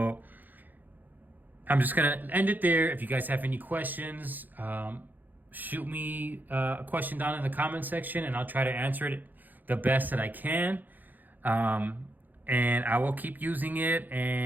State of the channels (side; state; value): left; late; 0.085 ms